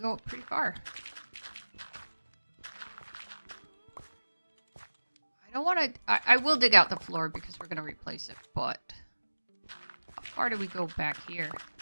go up pretty far. I don't want to... I will dig out the floor because we're going to replace it, but... How far do we go back here?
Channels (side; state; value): both; inverted; correlation -1.00